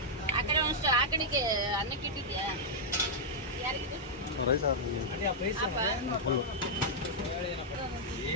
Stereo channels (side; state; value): both; normal; correlation -0.05